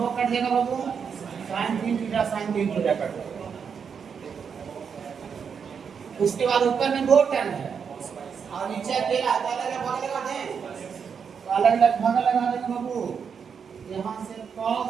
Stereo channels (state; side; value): quieter; left; 6.6 dB